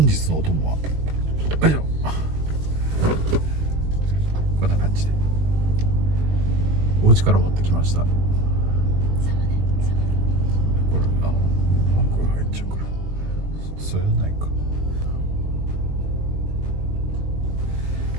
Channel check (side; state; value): left; late; 21 ms